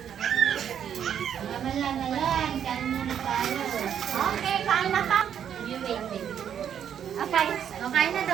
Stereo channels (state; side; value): quieter; left; 8.9 dB